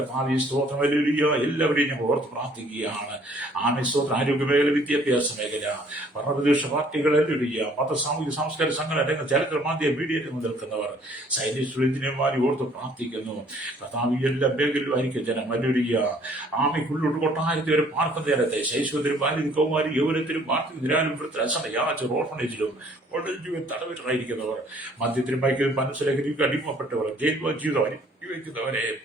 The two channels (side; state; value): both; normal; correlation 0.59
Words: ഭാവി സ്തോത്രം എല്ലാവരെയും ഞങ്ങൾ ഓർത്ത് പ്രാർത്ഥിക്കുകയാണ്. സ്തോത്രം ആരോഗ്യ മേഖല, വിദ്യാഭ്യാസ മേഖല, ഭരണപ്രതിപക്ഷ പാർട്ടികൾ, മത സാമൂഹിക സാംസ്കാരിക സംഘടന രംഗം, ചരിത്ര മാധ്യമ മീഡിയ രംഗം നിൽക്കുന്നവർ, സൈനിക എഞ്ചിനീയർമാരെ ഓർത്ത് പ്രാർത്ഥിക്കുന്നു. കർത്താവ് എല്ലാ മേഖലയിലും ആയിരിക്കും ജനം ആമയ്ക്കുള്ളിൽ കൊട്ടാരത്തിൽ വരെ പാർക്കുന്ന നേരത്തെ ശൈശവത്തിലും ബാല്യം കൗമാരി യൗവനത്തിലും നിരാലുപുരത്തിൽ അസമയാച്ച ഓർഫണേജിലും തടവിലായിരിക്കുന്നവർ, മദ്യത്തിനും മയക്കിലും മനസ്സിലേക്ക് അടിമപ്പെട്ടവർ, ജയിൽ ജീവിതം വയ്ക്കുന്നവരെ,